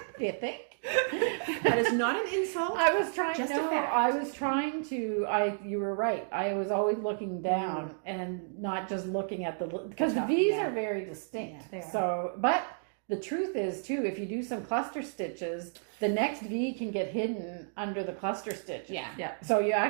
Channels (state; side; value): silent; left; digital silence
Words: Do you think? That is not an insult. I was trying. Just a fact. I was trying to. You were right. I was always looking down and not just looking at because the V's are very distinct. Yeah, so, but the truth is too, if you do some cluster stitches, the next V can get hidden under the cluster stitch. Yeah. So you